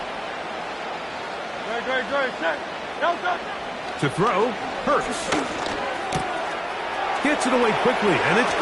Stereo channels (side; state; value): both; identical; correlation 1.00